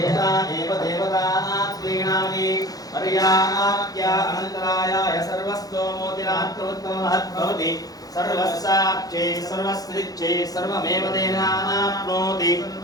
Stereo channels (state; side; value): late; right; 0.18 ms